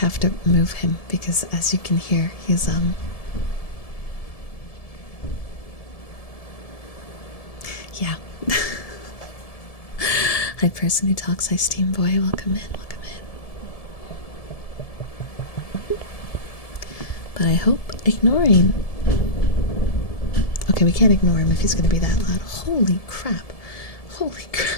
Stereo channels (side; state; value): right; late; 1.7 ms